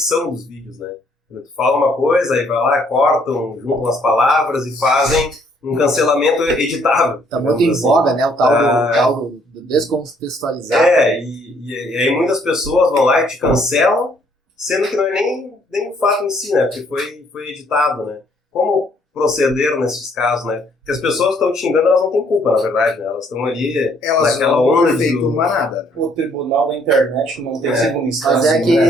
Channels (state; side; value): normal; both; correlation 0.65